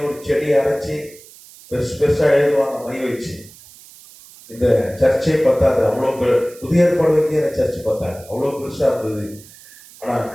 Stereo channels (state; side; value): noise; right; hiss, 22 dB below the sound